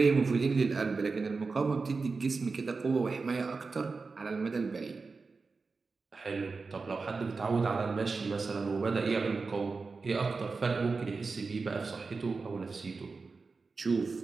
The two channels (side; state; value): left; quieter; 4.3 dB